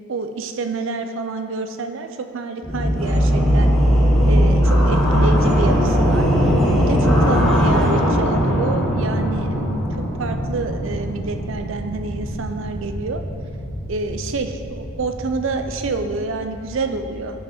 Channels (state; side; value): normal; both; correlation 0.69